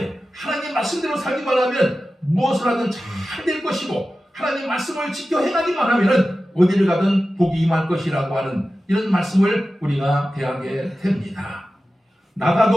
하나님 말씀대로 살기만 하면 무엇을 하든 잘 될 것이고 하나님 말씀을 지켜 행하기만 하면 어디를 가든 복이 임할 것이라고 하는 이런 말씀을 우리가 대하게 됩니다.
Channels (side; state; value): both; normal; correlation 0.94